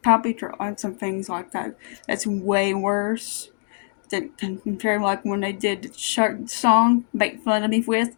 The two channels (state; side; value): silent; right; digital silence